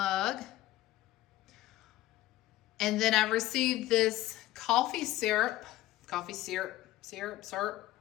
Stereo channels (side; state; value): right; quieter; 15.8 dB